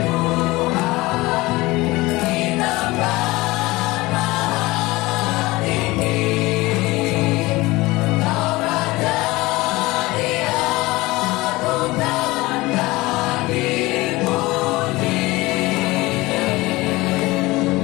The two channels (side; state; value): right; quieter; 20.7 dB